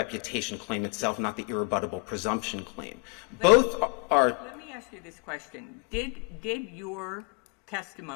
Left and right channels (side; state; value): right; quieter; 31.7 dB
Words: claim itself, not the irrebuttable presumption claim. Both are— Let me ask you this question. Did your